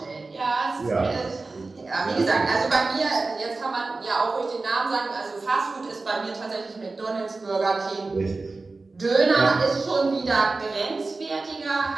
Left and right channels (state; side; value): quieter; left; 3.6 dB